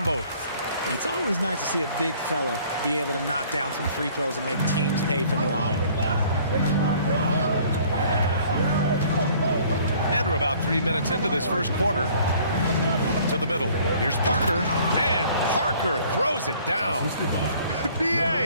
both. It's always nice to see a big fella be able to knock down some free throws and make teams pay from the line. And we're about 3 minutes into this first quarter. To the middle. Here's Parker. And Parker throws it down.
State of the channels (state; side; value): inverted; both; correlation -0.56